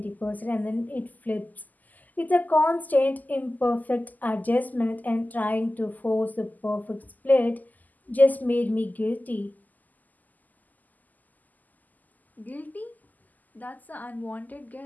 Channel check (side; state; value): right; late; 0.082 ms